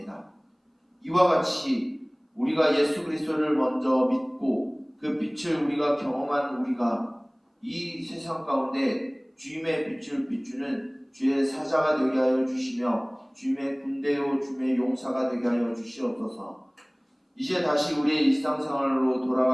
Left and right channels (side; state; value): both; identical; correlation 1.00